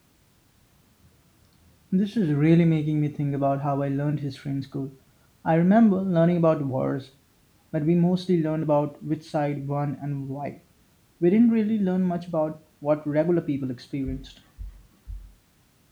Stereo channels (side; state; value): both; identical; correlation 1.00